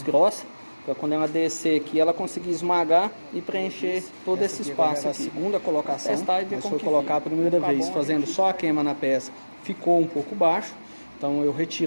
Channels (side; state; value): both; inverted; correlation -1.00